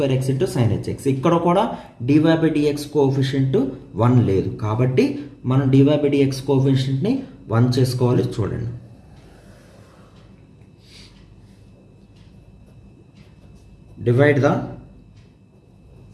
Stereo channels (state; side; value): identical; both; correlation 1.00